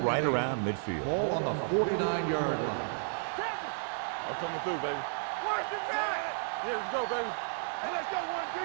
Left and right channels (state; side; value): silent; left; digital silence